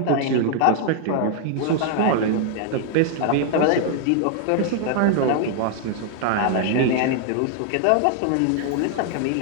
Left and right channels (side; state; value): both; different; correlation 0.00